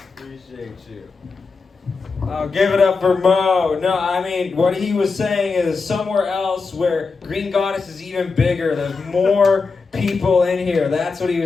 Appreciate you. Oh, give it up for Mo. No, what he was saying is somewhere else where Green Goddess is even bigger. There's more people in here. That's what he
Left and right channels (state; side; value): quieter; right; 4.5 dB